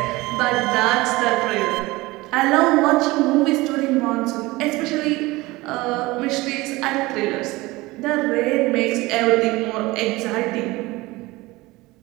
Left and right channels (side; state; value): left; quieter; 20.9 dB